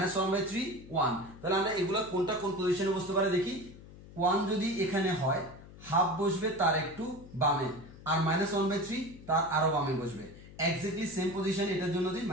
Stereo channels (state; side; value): noise; left; hum, 18 dB below the sound